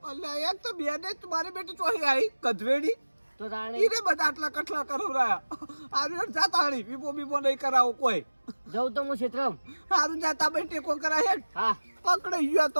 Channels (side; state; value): both; inverted; correlation -1.00